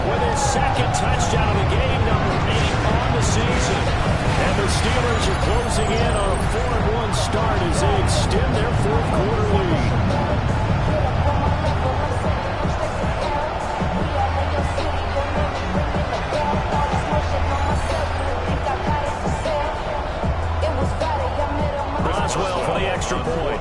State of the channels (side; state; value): both; identical; correlation 1.00